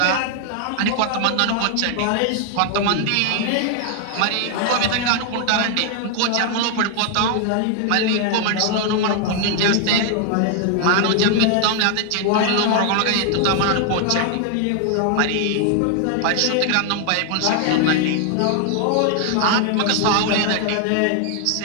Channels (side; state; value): both; different; correlation 0.00